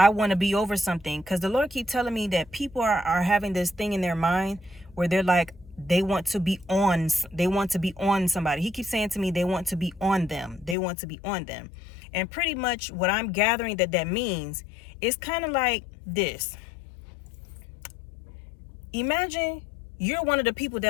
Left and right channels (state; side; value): drops out; right; at 10.8 s